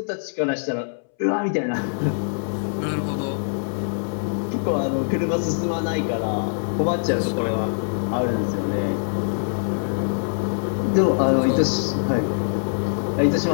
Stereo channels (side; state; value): right; silent; 63 dB below the other